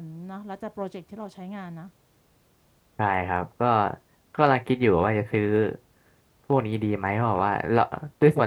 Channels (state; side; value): identical; both; correlation 1.00